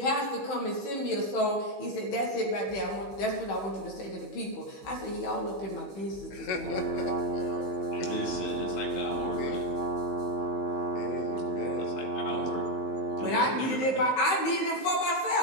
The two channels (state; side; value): late; right; 15 ms